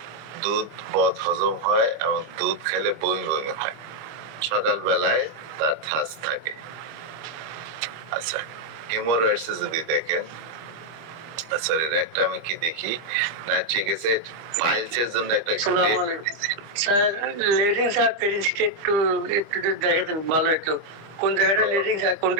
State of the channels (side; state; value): left; late; 25 ms